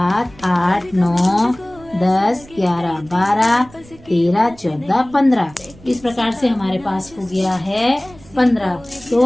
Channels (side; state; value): right; noise; rumble, 23 dB below the sound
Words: 8 9 10 11 12 13 14 15। इस प्रकार से हमारे पास हो गया है 15।